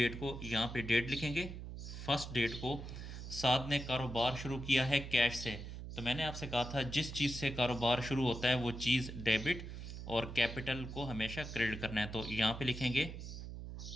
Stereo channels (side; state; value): right; noise; hum, 9 dB below the sound